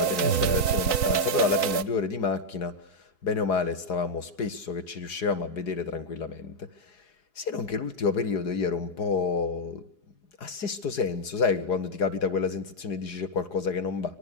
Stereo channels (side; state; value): right; late; 3.9 ms